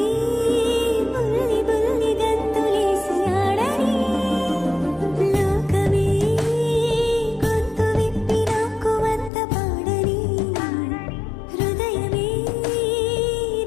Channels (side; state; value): right; drops out; at 9.3 s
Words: బుల్లి బుల్లి గంతులేసి ఆడని లోకమే గొంతు విప్పి నాకు వంత పాడని హృదయమే